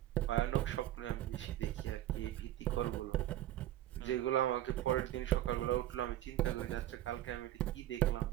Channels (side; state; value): left; quieter; 13.5 dB